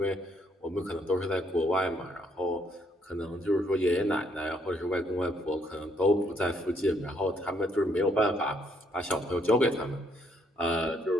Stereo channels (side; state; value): both; normal; correlation 0.70